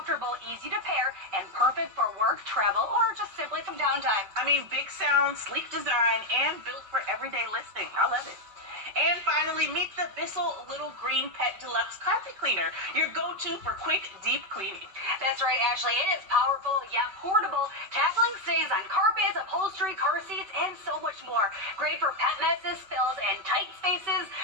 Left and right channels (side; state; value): left; late; 5.2 ms